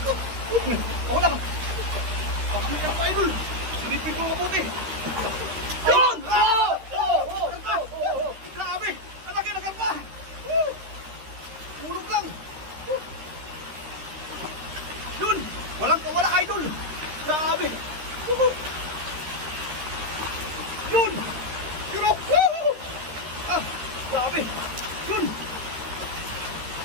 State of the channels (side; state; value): left; late; 13 ms